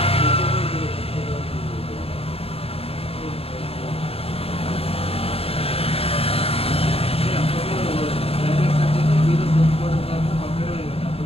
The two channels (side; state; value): right; late; 0.28 ms